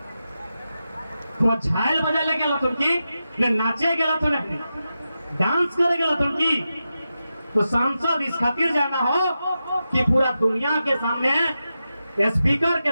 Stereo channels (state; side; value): inverted; both; correlation -0.90